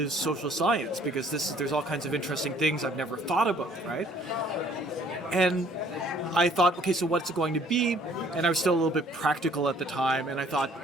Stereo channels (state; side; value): normal; both; correlation 0.59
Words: social science because there's all kinds of interesting things I've never thought about, right? And I thought, okay, so what's it going to be? And I was still a little bit practical at the time, and I thought,